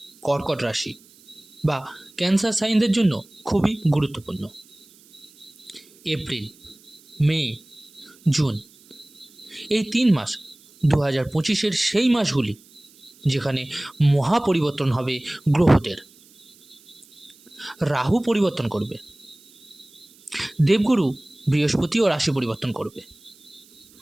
কর্কট রাশি বা ক্যান্সার সাইনদের জন্য খুবই গুরুত্বপূর্ণ। এপ্রিল, মে, জুন এই 3 মাস 2025-এর সেই মাসগুলি যেখানে মহা পরিবর্তন হবে গ্রহদের। রাহু পরিবর্তন করবে, দেবগুরু বৃহস্পতিও রাশি পরিবর্তন করবে,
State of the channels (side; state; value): right; noise; hiss, 27 dB below the sound